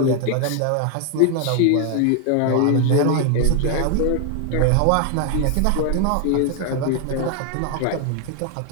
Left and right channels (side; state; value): both; different; correlation 0.00